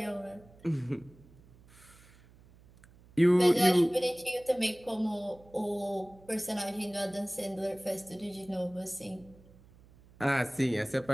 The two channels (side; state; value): right; noise; hum, 25 dB below the sound